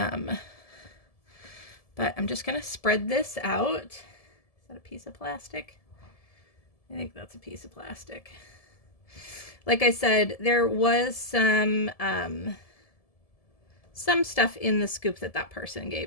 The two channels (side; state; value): right; late; 1.7 ms